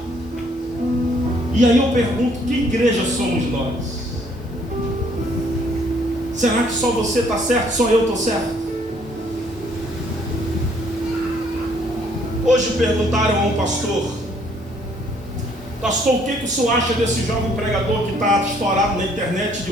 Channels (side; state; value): both; normal; correlation 0.64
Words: E aí eu pergunto, que igreja somos nós? Será que só você está certo, só eu estou certo? Hoje perguntaram a um pastor, o que o senhor acha desse jovem pregador que está estourado na internet de